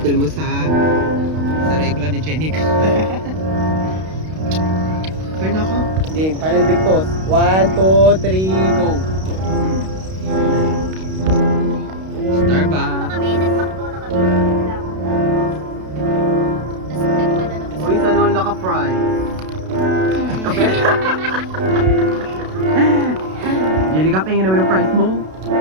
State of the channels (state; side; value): late; left; 32 ms